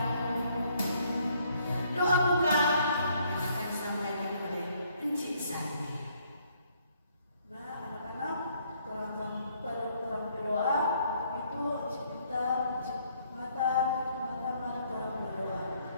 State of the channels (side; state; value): both; inverted; correlation -0.66